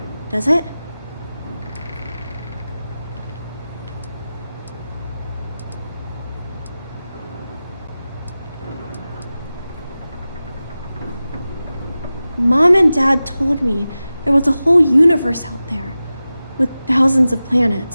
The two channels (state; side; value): inverted; both; correlation -0.95